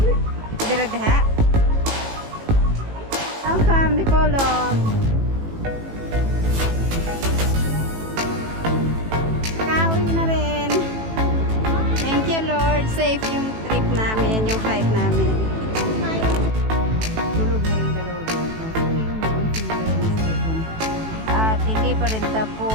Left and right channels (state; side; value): late; left; 18 ms